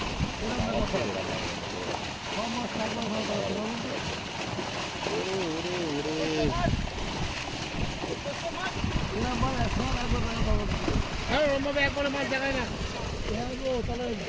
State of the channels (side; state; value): both; identical; correlation 1.00